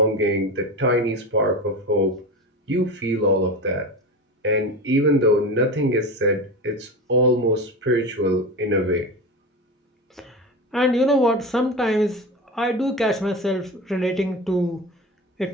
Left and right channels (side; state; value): both; normal; correlation 0.26